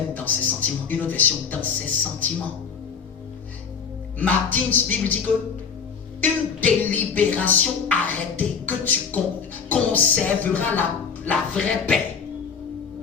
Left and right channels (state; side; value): quieter; right; 6.2 dB